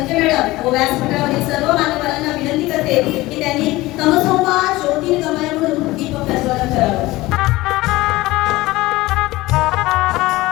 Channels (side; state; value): right; quieter; 19.1 dB